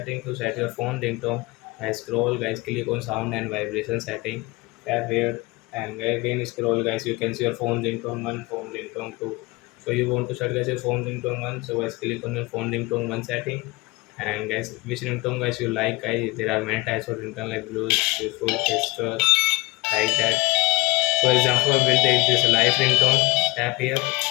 to set your phone ringtone. Guys, scroll guys, click on sound and vibration setting. Tap here and again scroll guys, you can see your phone ringtone 1, phone ringtone 2. So you want to set guys your phone ringtone 1, so guys click on your phone ringtone 1 setting. And guys, which ringtone guys you like guys, there are many types of ringtone like blues, beautiful, gesture, like that. So example, we'll take this live ringtone. Tap here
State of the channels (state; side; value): quieter; right; 22.8 dB